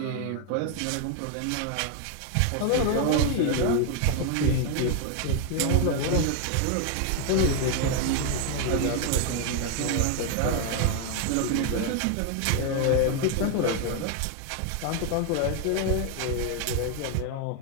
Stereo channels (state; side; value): different; both; correlation 0.01